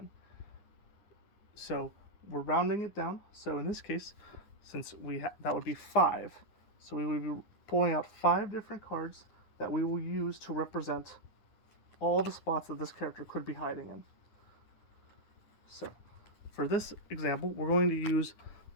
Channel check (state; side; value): late; right; 9.8 ms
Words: So we're rounding it down. So in this case, since that would be 5. So we would be pulling out 5 different cards that we will use to represent all the spots that this character could be hiding in. So for this example, we're going to use